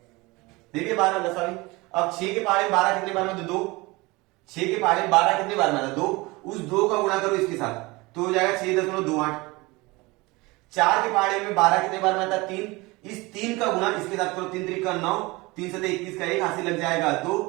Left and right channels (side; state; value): left; quieter; 23.3 dB